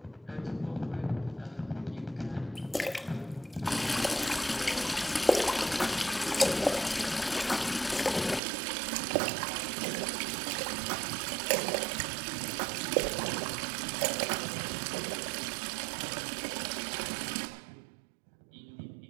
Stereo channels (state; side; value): drops out; left; at 8.4 s